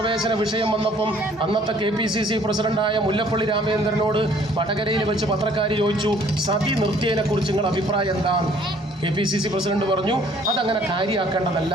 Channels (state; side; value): normal; both; correlation 0.58